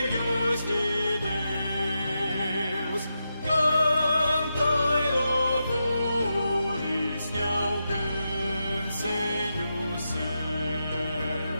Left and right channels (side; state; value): both; inverted; correlation -0.87